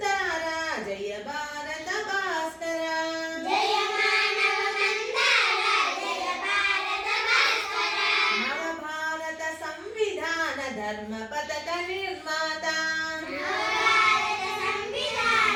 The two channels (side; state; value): both; identical; correlation 1.00